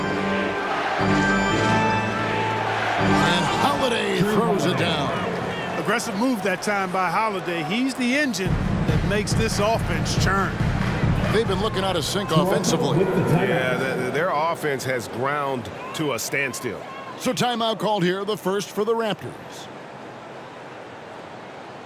And Holiday throws it down. Aggressive move that time by Holiday. He's the engine that makes this offense churn. They've been looking out of sync offensively. Yeah, their offense has ground to a standstill. So timeout called here, the first for the Raptors.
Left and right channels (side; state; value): both; identical; correlation 1.00